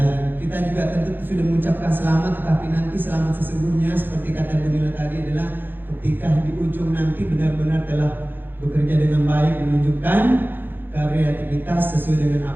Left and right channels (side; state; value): left; late; 0.095 ms